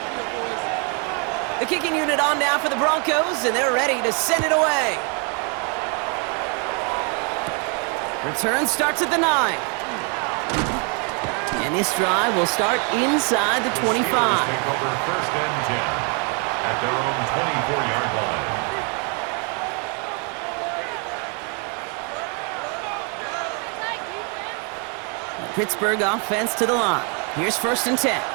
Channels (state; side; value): quieter; left; 36.5 dB